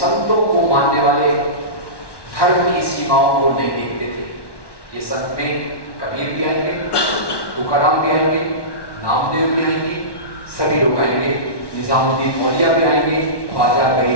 को मानने वाले धर्म की सीमाओं को नहीं देखते थे। ये संत में कबीर भी आएंगे, तुकाराम भी आएंगे, नामदेव भी आएंगे, सभी लोग आएंगे, निजामुद्दीन औलिया भी आएंगे, ख्वाजा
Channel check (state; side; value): late; right; 1.1 ms